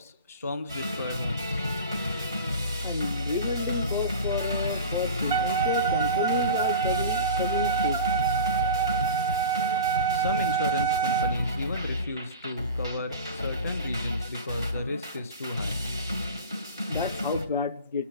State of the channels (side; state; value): both; inverted; correlation -0.33